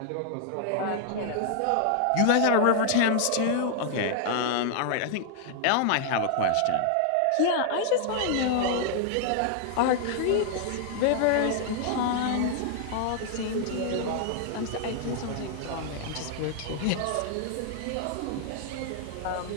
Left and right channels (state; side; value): different; both; correlation 0.00